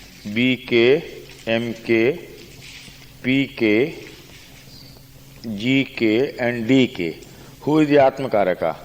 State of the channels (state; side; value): identical; both; correlation 1.00